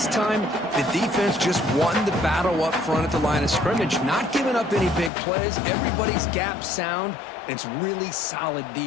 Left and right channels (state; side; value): drops out; right; at 5.1 s